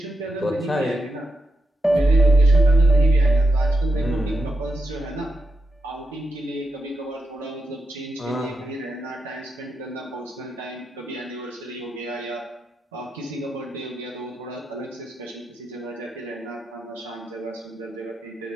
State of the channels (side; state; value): both; normal; correlation 0.85